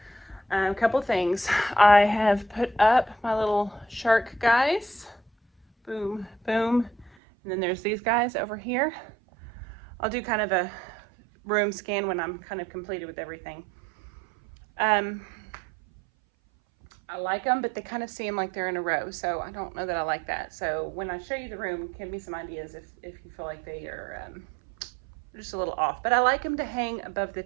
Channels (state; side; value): drops out; left; at 7.1 s